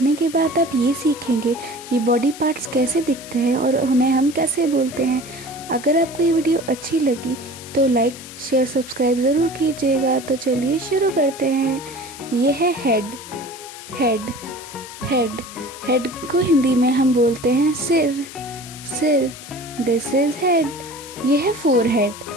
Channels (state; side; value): noise; left; hiss, 15 dB below the sound